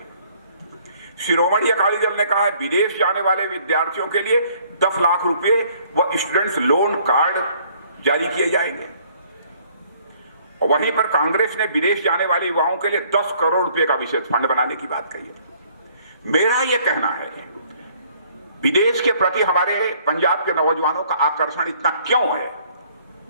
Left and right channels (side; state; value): both; inverted; correlation -0.61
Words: शिरोमणि अकाली दल ने कहा है विदेश जाने वाले विद्यार्थियों के लिए 10 लाख रुपए व स्टूडेंट्स लोन कार्ड जारी किए जाएंगे। और वहीं पर कांग्रेस ने विदेश जाने वाले युवाओं के लिए 10 करोड़ रुपए का विशेष फंड बनाने की बात कही है। मेरा यह कहना है विदेश के प्रति हमारे पंजाब के नौजवानों का आकर्षण इतना क्यों है?